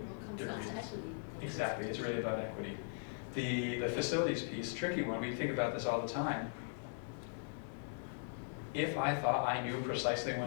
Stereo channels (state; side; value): silent; right; 52 dB below the other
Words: different reasons. Exactly, it's really about equity. The facilities piece, tricky one, we think about this all the time. If I thought I knew precisely